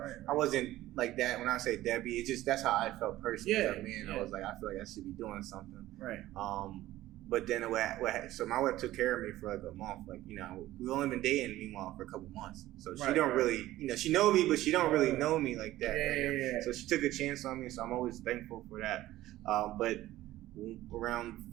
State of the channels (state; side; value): quieter; left; 15.5 dB